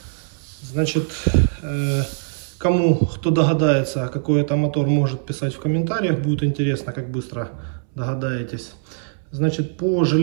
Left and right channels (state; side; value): silent; left; 64 dB below the other